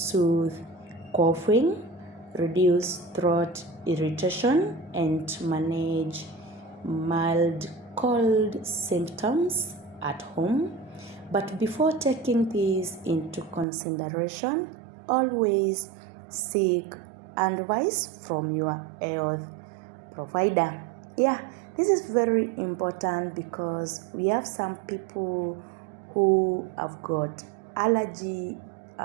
coughing, reduce throat irritation, and manage mild cold symptoms at home. But before taking this into consideration, always seek advice from your health provider. Yeah, this is very important because we have some people who have got allergy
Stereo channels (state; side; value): drops out; left; at 13.7 s